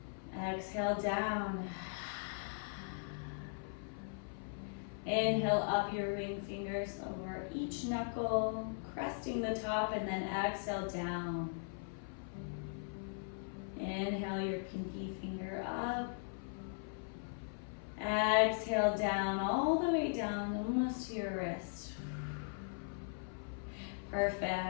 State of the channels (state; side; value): silent; right; 52 dB below the other